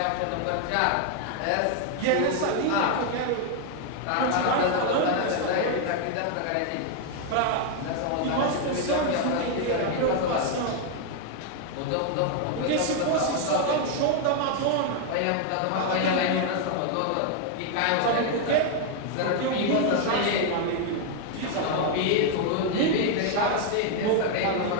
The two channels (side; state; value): both; different; correlation 0.00